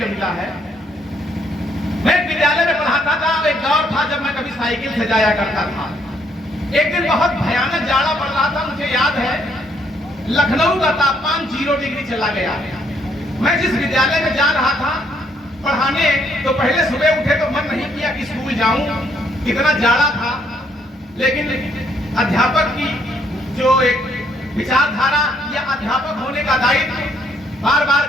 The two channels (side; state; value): both; normal; correlation 0.70